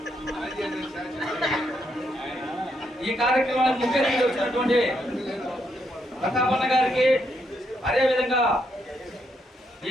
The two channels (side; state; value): both; normal; correlation 0.77